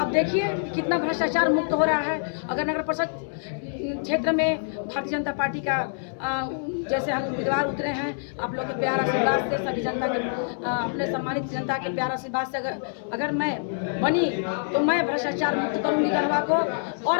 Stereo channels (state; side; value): silent; right; 60 dB below the other